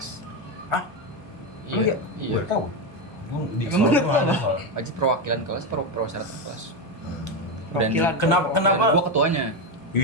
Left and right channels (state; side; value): normal; both; correlation 0.11